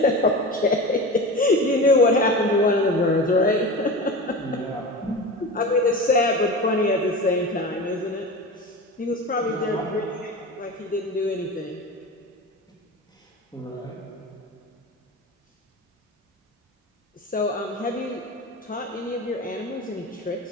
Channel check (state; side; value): normal; both; correlation 0.29